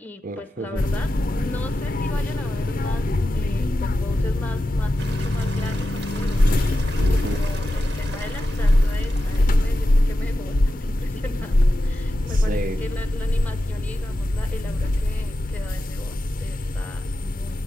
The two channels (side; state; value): both; normal; correlation 0.91